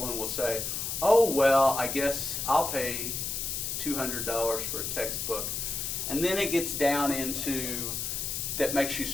will say, oh, well, I guess I'll pay $200 for a textbook. And then it gets down into that makes you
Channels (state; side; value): noise; left; hiss, 3 dB below the sound